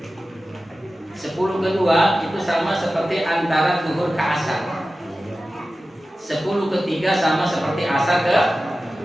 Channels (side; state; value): both; normal; correlation 0.95